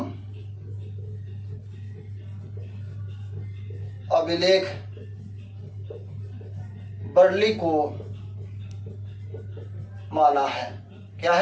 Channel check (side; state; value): both; identical; correlation 1.00